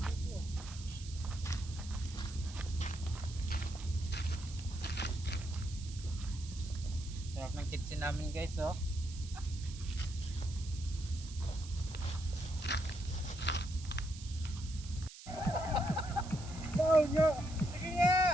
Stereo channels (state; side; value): noise; right; hiss, 15 dB below the sound